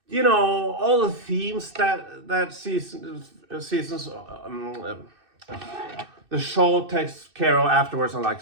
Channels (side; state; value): left; late; 2.6 ms